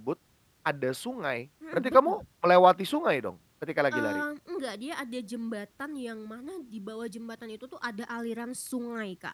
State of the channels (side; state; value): both; identical; correlation 1.00